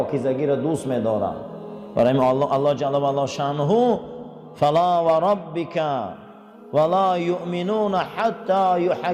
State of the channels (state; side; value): identical; both; correlation 1.00